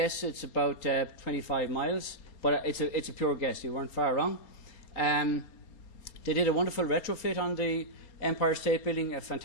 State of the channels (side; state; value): right; late; 4.3 ms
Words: it's about 25 miles, but it's a pure guess. You weren't far wrong. They did a wonderful retrofit on the Empire State Building, a